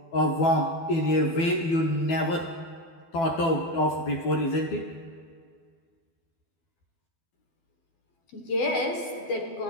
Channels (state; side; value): late; right; 12 ms